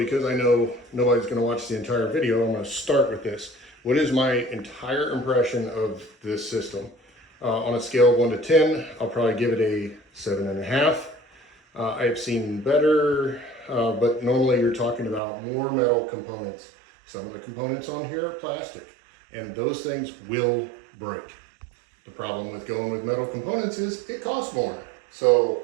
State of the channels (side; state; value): left; drops out; at 15.2 s